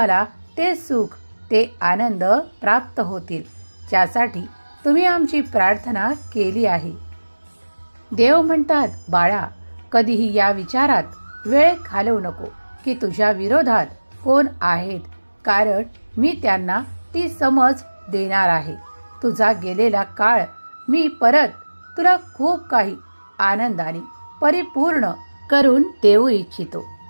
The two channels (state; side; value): inverted; both; correlation -1.00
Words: ते सुख, ते आनंद प्राप्त होतील, ज्यासाठी तुम्ही आमची प्रार्थना केली आहे. देव म्हणतात, बाळा, कधीही या विचारात वेळ घालवू नको की तुझ्या विरोधात कोण आहेत, कारण मी त्यांना ती समज देणार आहे. तुझा गेलेला काळ मी परत तुला खूप काही आनंदाने परिपूर्ण करून देऊ इच्छितो.